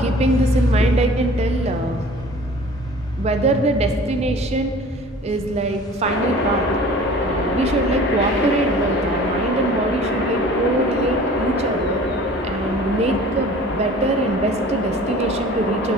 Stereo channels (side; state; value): both; normal; correlation 0.45